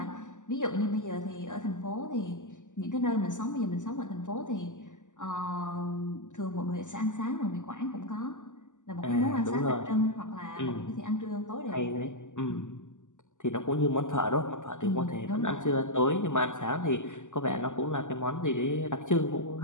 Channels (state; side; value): late; right; 0.86 ms